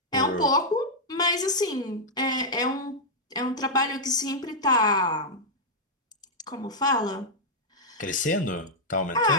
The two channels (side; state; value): both; normal; correlation -0.05